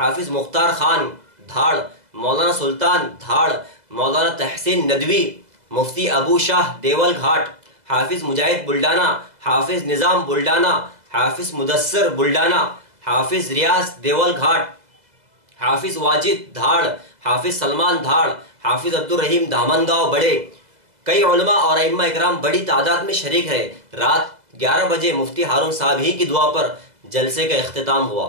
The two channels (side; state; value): left; late; 2.0 ms